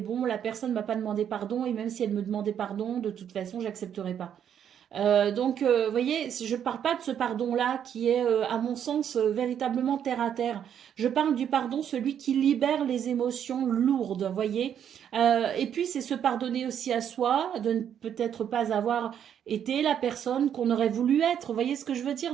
la personne m'a pas demandé pardon, et même si elle me demandait pardon, de toute façon, j'accepterai pas. Donc, vous voyez, je ne parle pas de ce pardon-là qui est, à mon sens, véritablement terre à terre. Je parle du pardon, celui qui libère les émotions lourdes, vous voyez. Et puis, c'est se pardonner aussi à soi, de ne peut-être pas avoir été la personne qu'on aurait voulu être. Vous voyez ce que je veux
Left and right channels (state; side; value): quieter; left; 9.1 dB